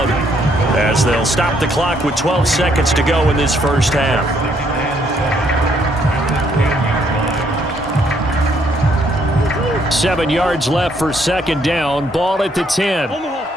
as they'll stop the clock with 12 seconds to go in this first half. Seven yards left for 2nd down. Ball at the 10.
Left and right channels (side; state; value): both; normal; correlation 0.69